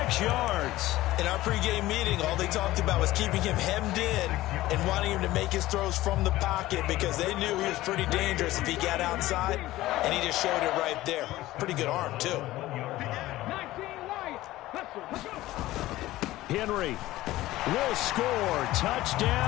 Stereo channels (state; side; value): quieter; right; 16.6 dB